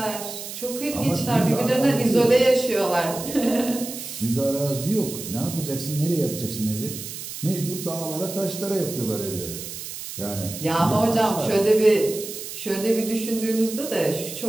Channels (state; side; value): noise; right; hiss, 9 dB below the sound